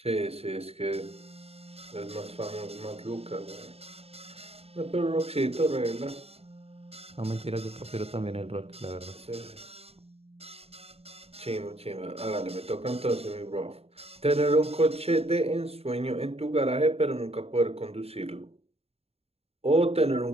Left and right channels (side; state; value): left; late; 0.29 ms